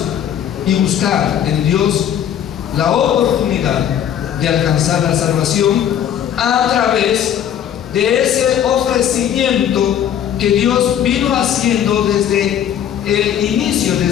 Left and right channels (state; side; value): quieter; right; 9.8 dB